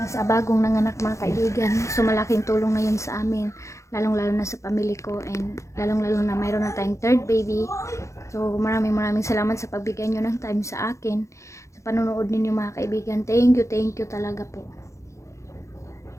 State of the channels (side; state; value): right; late; 0.14 ms